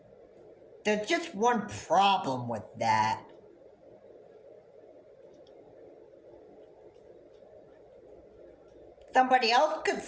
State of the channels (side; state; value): both; identical; correlation 1.00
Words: There's just one problem with that. Somebody else could